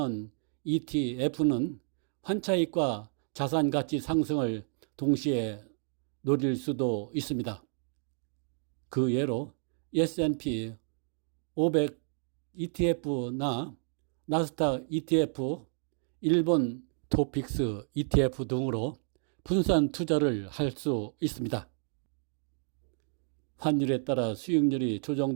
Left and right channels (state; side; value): silent; left; 57 dB below the other